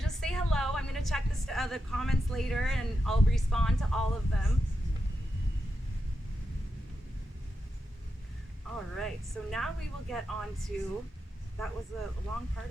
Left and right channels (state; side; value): normal; both; correlation 0.88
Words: say hello. I'm going to check the comments later, and I'll respond to all of them. All right. So now we will get on to, that was a long part